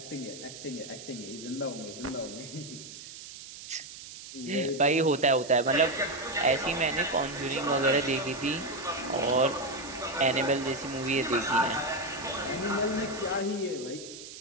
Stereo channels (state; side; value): noise; right; hiss, 13 dB below the sound